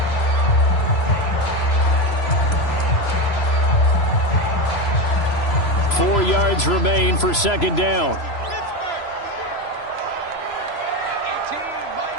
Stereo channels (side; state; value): right; late; 3.0 ms